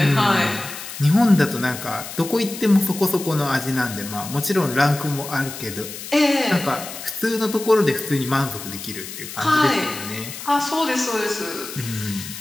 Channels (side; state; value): left; noise; hiss, 11 dB below the sound